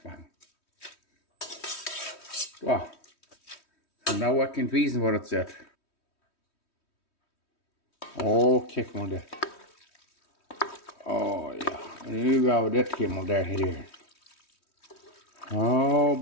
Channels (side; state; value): right; late; 3.1 ms